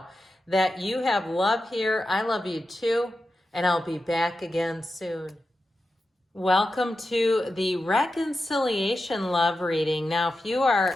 that you have love here. I love you too. And I'll be back again soon. Welcome to the reconciliation love reading. Now, if you are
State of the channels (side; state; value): both; normal; correlation 0.91